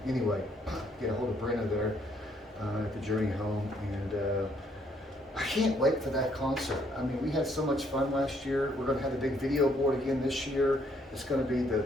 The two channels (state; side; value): normal; both; correlation 0.68